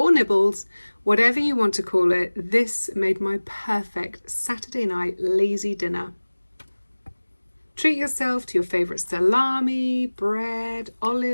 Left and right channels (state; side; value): inverted; both; correlation -1.00